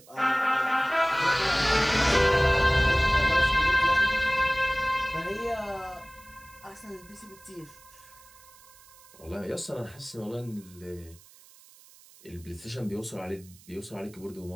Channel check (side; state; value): right; noise; hiss, 24 dB below the sound